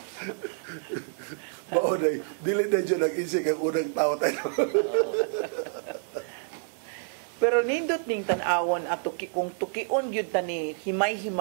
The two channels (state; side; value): silent; left; digital silence